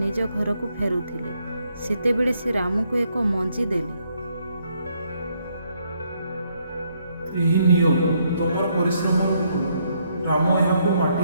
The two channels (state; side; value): inverted; both; correlation -0.73